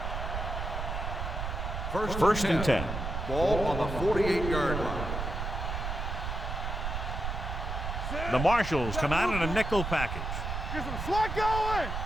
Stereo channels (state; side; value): noise; right; rumble, 4 dB below the sound